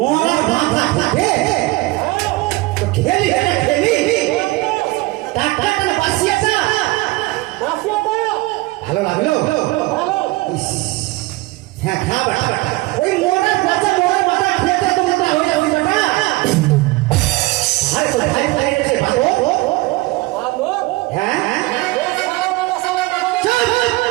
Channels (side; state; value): left; quieter; 21.3 dB